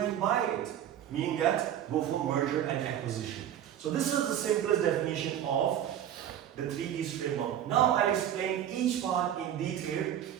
buy it. Meaning that, go for merger and acquisition. So this is the simplest definition of the 3Ds framework. Now I'll explain each part in detail.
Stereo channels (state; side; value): quieter; left; 10.6 dB